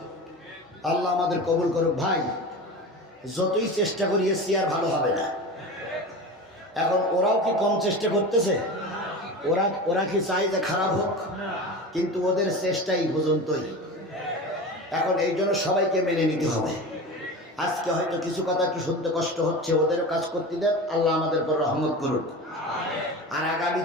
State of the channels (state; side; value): normal; both; correlation 0.30